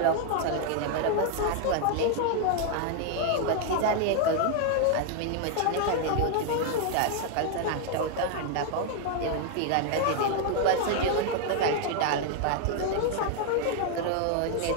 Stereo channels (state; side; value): different; both; correlation 0.00